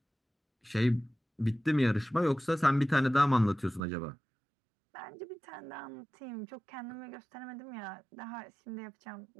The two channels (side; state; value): left; drops out; at 3.8 s